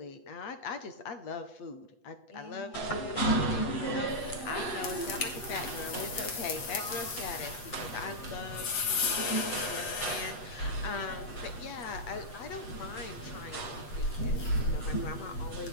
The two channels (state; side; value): late; right; 8.2 ms